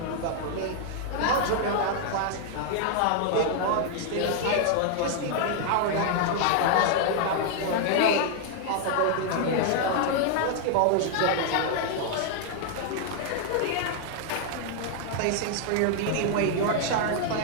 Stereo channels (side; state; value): both; different; correlation 0.00